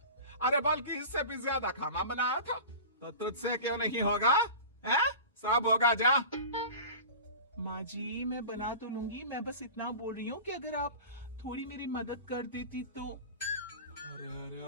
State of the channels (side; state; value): both; inverted; correlation -0.34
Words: अरे बल्कि इससे भी ज्यादा खाना बनाया था, तो तुझसे क्यों नहीं होगा? है? सब होगा जा। माँ जी मैं बना तो लूंगी, मैं बस इतना बोल रही हूँ कि अगर आप थोड़ी मेरी मदद कर देती तो। अरे अरे